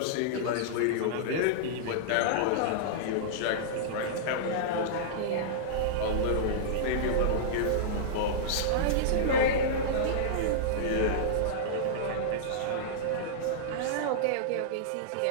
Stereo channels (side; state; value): both; different; correlation -0.02